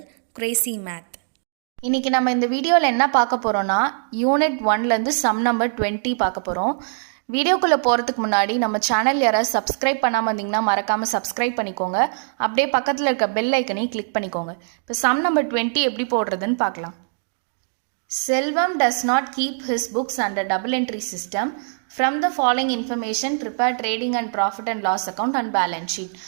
Crazy Math. இன்றைக்கி நம்ம இந்த வீடியோவில் என்ன பார்க்க போகிறோன்னா யூனிட் 1லேருந்து சம் நம்பர் 20 பார்க்க போகிறோம். வீடியோக்குள்ளே போகிறதுக்கு முன்னாடி நம்ம சேனல் யாராவது சப்ஸ்கிரைப் பண்ணாமல் இருந்தீங்கன்னா மறக்காமல் சப்ஸ்கிரைப் பண்ணிக்கோங்க. அப்படியே பக்கத்தில் இருக்க பெல் ஐக்கனையும் கிளிக் பண்ணிக்கோங்க. இப்போ சம் நம்பர் 20 எப்படி போடுறதுன்னு பார்க்கலாம். செல்வம் does not keep his books under double entry system. From the following information, prepare trading and profit and loss account and balance sheet.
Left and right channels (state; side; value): silent; left; digital silence